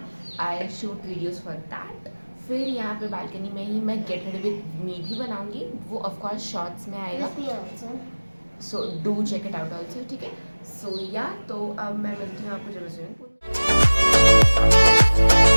I shoot videos for that. फिर यहाँ पे बालकनी में ही मैं गेट रेडी विद मी भी बनाऊंगी, वो ऑफकोर्स शॉर्ट्स में आएगा, so do check it out also. ठीक है, सो या तो अब मैं मिलती हूँ आपको जब मैं स्विमिंग पूल में।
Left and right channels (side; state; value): both; inverted; correlation -1.00